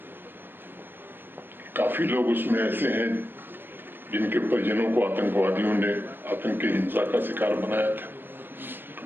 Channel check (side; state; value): left; late; 0.097 ms